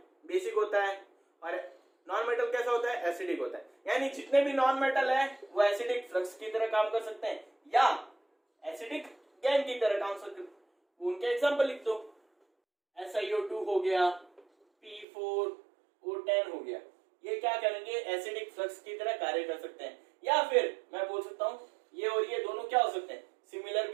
बेसिक होता है, और नॉन मेटल कैसा होता है, एसिडिक होता है। यानी जितने भी नॉन मेटल है वो एसिडिक फ्लक्स की तरह काम कर सकते हैं या एसिडिक गैंग की तरह काम कर सकते हैं, उनके एग्जांपल लिख दो। SiO2 हो गया, P4O10 हो गया, ये क्या करेंगे, एसिडिक फ्लक्स की तरह कार्य कर सकते हैं। या फिर मैं बोल सकता हूं ये और ये दोनों क्या हो सकते हैं, सिमिलर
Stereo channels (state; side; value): drops out; left; at 15.1 s